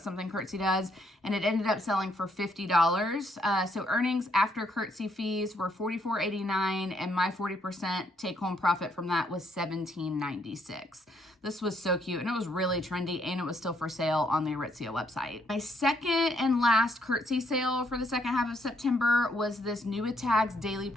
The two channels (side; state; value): both; normal; correlation 0.72